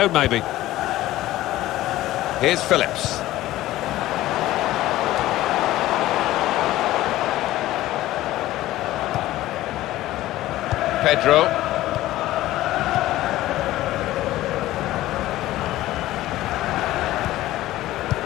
maybe. Here's Phillips. Pedro.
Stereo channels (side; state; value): right; quieter; 15.7 dB